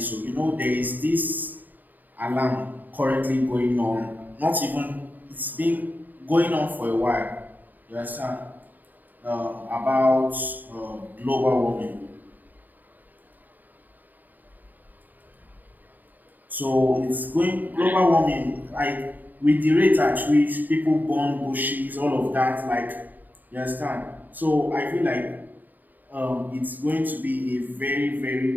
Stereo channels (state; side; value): late; left; 0.086 ms